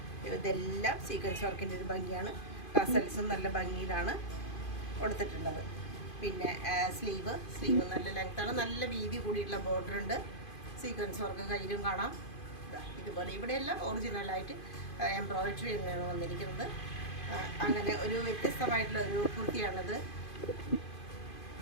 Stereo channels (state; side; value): late; right; 2.5 ms